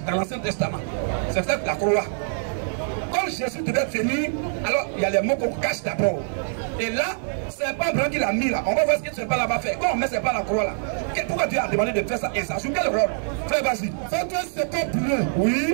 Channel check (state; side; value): silent; left; 62 dB below the other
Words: dans l'Ancien Testament. C'est ça la courroie. Quand Jésus devait venir, alors il y a les mots qu'on cache d'abord. Et là, c'est pas Blanc qui l'a mis là. On va voir ce que ce serpent là va faire. Quand on met ce serpent à la croix là, pourquoi Dieu a demandé de faire ça? Et ça joue quel rôle? Frère, vas-y. Fais-toi un serpent brûlant.